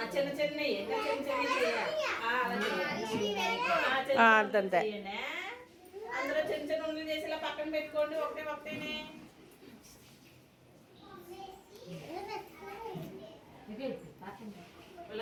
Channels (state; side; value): identical; both; correlation 1.00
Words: చిన్న చిన్నవి చిన్న చిన్నవి చేయాలి. అందరూ చిన్న చిన్న ఉండలు చేసి ఇలా పక్కన పెట్టుకోండి. ఒకటేనే